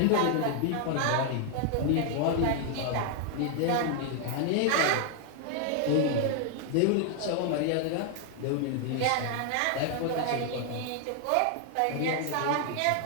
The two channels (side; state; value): both; different; correlation 0.00